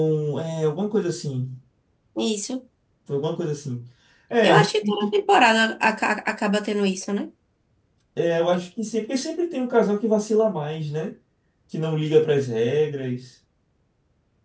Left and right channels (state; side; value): identical; both; correlation 1.00